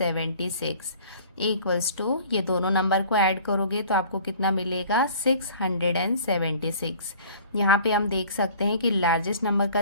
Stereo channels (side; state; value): both; inverted; correlation -0.49